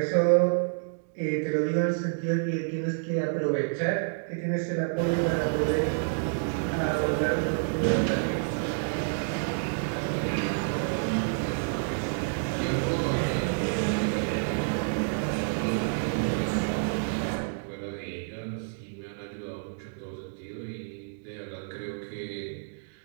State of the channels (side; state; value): left; silent; digital silence